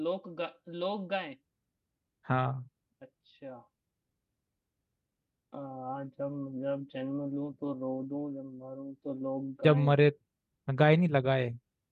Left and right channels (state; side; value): identical; both; correlation 1.00